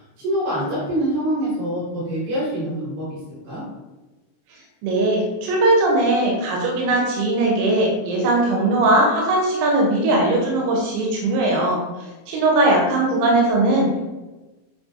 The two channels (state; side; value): late; left; 23 ms